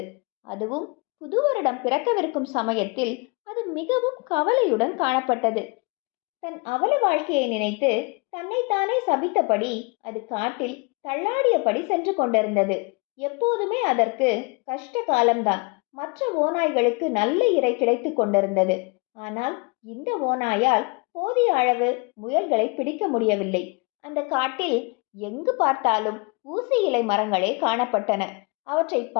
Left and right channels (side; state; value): right; quieter; 30.1 dB